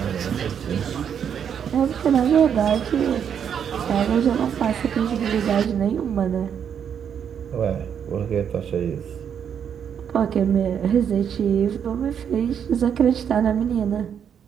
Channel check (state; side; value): quieter; left; 8.1 dB